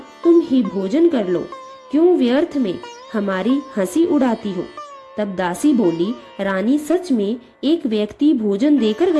तुम ही भोजन कर लो, क्यों व्यर्थ में हमारी हंसी उड़ाती हो। तब दासी बोली, रानी सच में एक व्यक्ति भोजन देकर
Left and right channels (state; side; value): identical; both; correlation 1.00